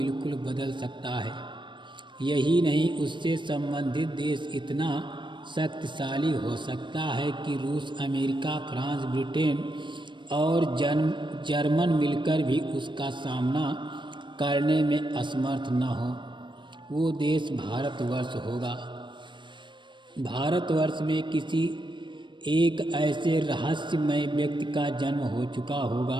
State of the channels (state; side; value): late; left; 0.23 ms